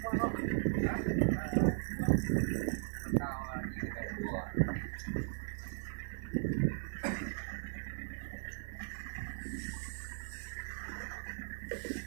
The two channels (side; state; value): left; silent; 53 dB below the other